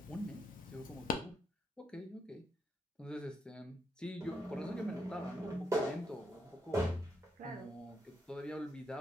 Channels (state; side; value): normal; both; correlation 0.79